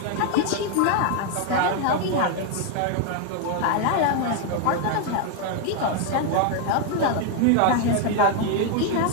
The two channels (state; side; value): different; both; correlation 0.01